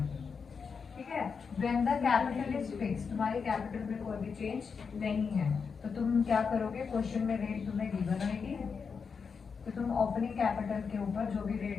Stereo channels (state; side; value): quieter; right; 5.7 dB